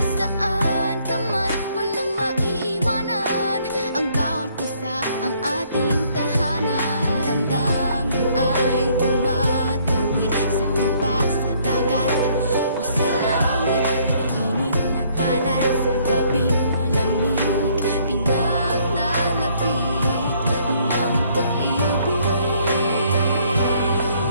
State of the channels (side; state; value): both; inverted; correlation -0.65